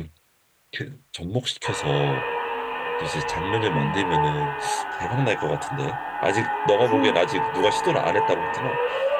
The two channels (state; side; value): identical; both; correlation 1.00